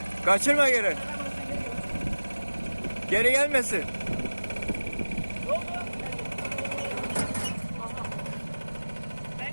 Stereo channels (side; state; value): both; inverted; correlation -1.00